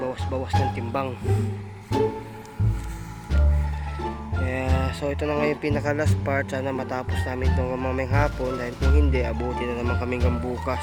ng timbang. Kaya, so ito na nga yung pinaka last part. Sana matapos namin itong mamayang hapon. Dahil kung hindi, abuti na naman kami hanggang bukas,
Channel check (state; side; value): identical; both; correlation 1.00